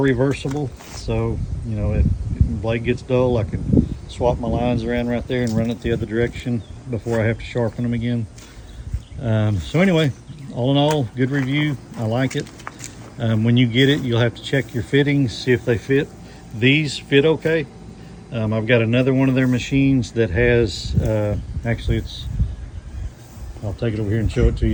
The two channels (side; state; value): both; identical; correlation 1.00